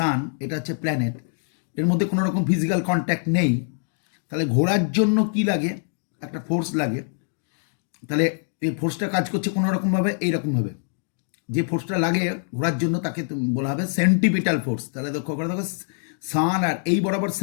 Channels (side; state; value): right; silent; digital silence